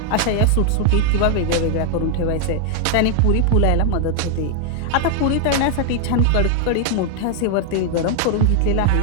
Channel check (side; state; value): both; different; correlation 0.00